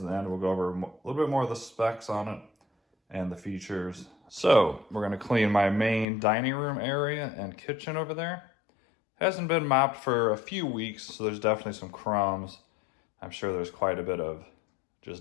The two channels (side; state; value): right; drops out; at 6.1 s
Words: end we'll go over a little bit more of the specs on it and the features. So we're gonna clean my main dining room area and kitchen over there. Hasn't been mopped for a few weeks, so there's definitely some crumbs. I'm sure there's quite a bit of